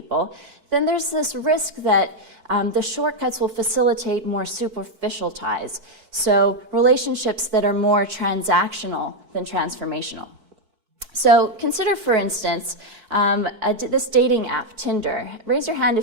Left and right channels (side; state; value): left; late; 4.5 ms